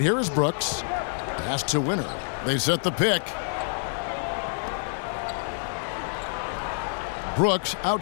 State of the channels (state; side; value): silent; right; 60 dB below the other